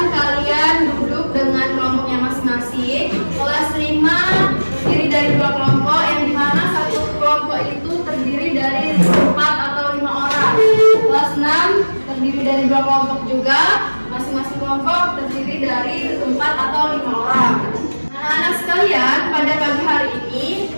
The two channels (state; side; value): inverted; both; correlation -1.00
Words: kalian duduk dengan kelompoknya masing-masing. Kelas 5 terdiri dari 2 kelompok, yang dimana satu kelompok itu terdiri dari 4 atau 5 orang. Kelas 6 terdiri dari 2 kelompok juga, masing-masing kelompok terdiri dari 4 atau 5 orang. Anak-anak sekalian, pada pagi hari ini